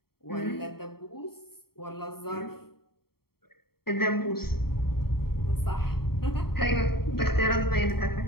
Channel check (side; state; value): right; late; 0.95 ms